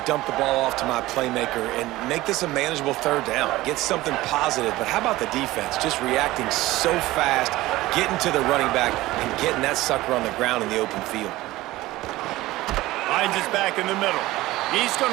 dump the ball off to my playmaker and make this a manageable 3rd down. Get something positive. But how about the defense? Just reacting so fast, getting to the running back, and getting that sucker on the ground in the open field. Hines is back in the middle. He's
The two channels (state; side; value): quieter; left; 17.8 dB